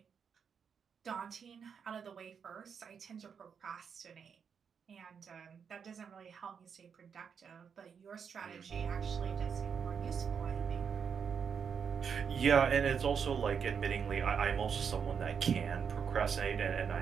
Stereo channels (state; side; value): quieter; left; 6.8 dB